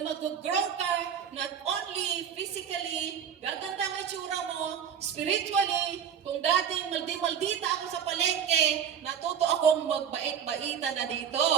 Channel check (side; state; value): left; quieter; 8.2 dB